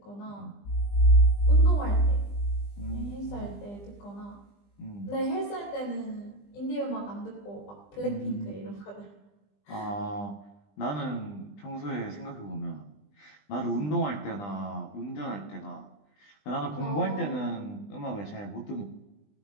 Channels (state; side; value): late; right; 20 ms